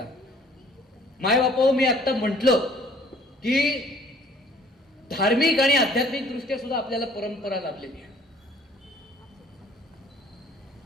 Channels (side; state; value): both; normal; correlation 0.57